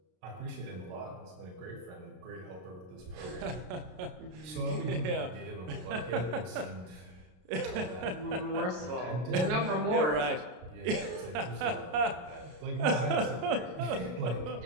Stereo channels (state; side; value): late; left; 33 ms